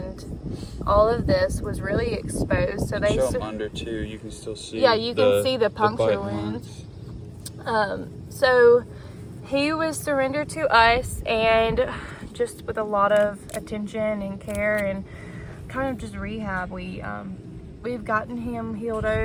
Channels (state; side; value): identical; both; correlation 1.00